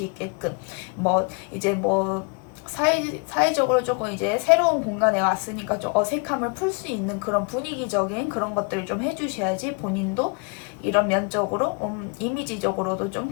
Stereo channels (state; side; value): quieter; right; 34.1 dB